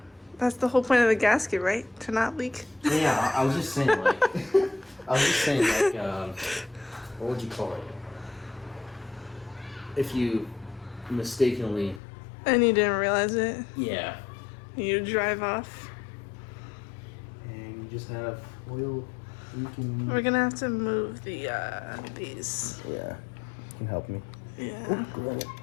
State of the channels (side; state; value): right; drops out; at 12.0 s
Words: That's the whole point of the gasket, right? To not leak. Yeah, I was just saying like, what would you call it? If you mistakenly. And you didn't realize it. Yeah. You drive off. And you just have oil leaking. We're gonna have to move the these. Yeah, you can help me. Yeah. Good.